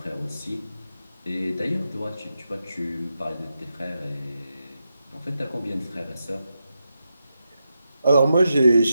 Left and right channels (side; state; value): both; inverted; correlation -0.87